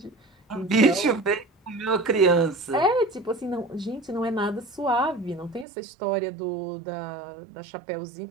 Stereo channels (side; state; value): left; drops out; at 5.7 s